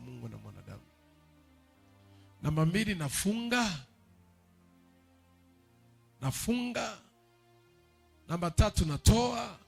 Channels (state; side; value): identical; both; correlation 1.00